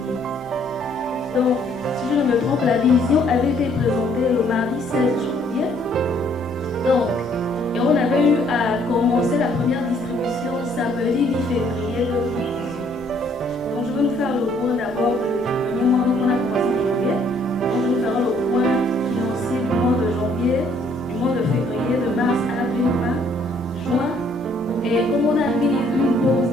Donc, si je ne me trompe, la vision avait été présentée le mardi 16 janvier. Donc, et on avait eu à commencer la première distribution samedi 10 février 2018. Donc, je vais nous faire le point d'abord du premier mois. Donc, on a commencé en janvier. Donc, je nous ferai le point financier du mois de janvier, du mois de février, de mars, avril, mai, juin. Et comme on a mis une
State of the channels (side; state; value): both; normal; correlation 0.64